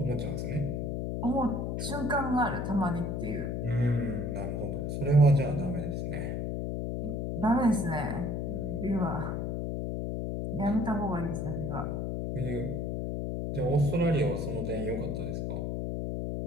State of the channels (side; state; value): left; noise; hum, 2 dB below the sound